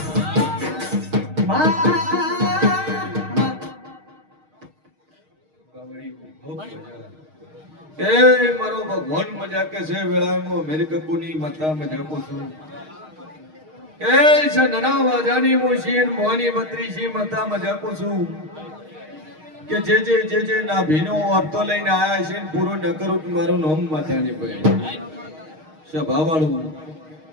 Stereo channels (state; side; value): late; left; 6.4 ms